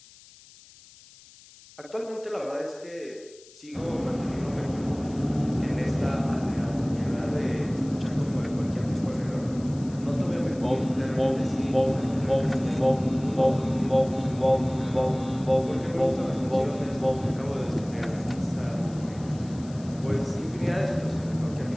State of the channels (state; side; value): noise; left; hiss, 23 dB below the sound